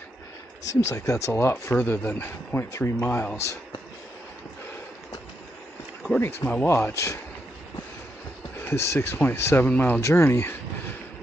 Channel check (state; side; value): normal; both; correlation 0.81